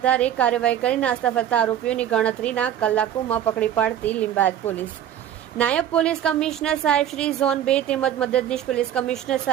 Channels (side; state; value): left; quieter; 10.6 dB